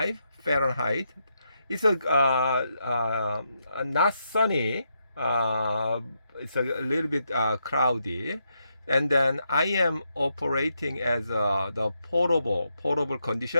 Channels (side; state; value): both; inverted; correlation -0.81